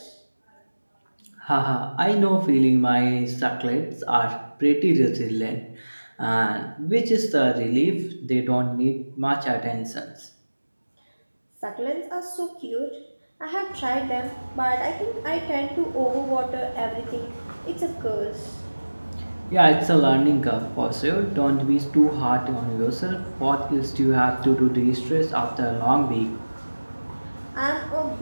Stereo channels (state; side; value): inverted; both; correlation -1.00